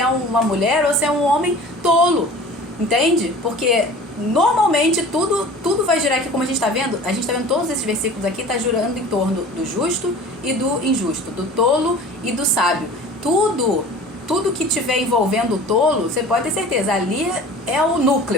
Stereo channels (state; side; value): normal; both; correlation 0.42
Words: uma mulher ou se é um homem tolo, entende? Porque normalmente tudo vai girar aqui, como a gente está vendo todos esses versículos aqui, está girando em torno do justo e do injusto, do tolo e do sábio. Tudo que tiver envolvendo o tolo, você pode ter certeza, ali é o